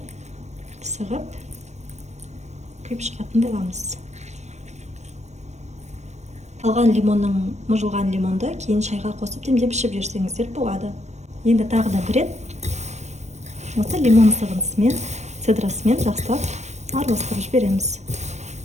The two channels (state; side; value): late; left; 0.33 ms